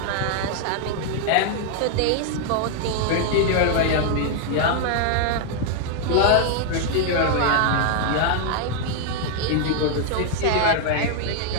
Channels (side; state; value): both; different; correlation 0.00